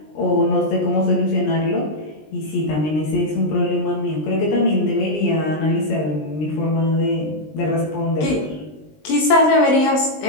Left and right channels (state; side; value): late; right; 20 ms